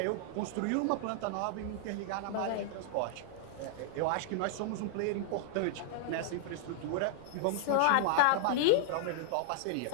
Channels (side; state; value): both; different; correlation -0.01